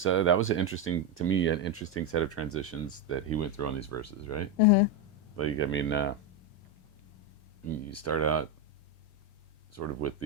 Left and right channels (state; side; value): late; right; 3.1 ms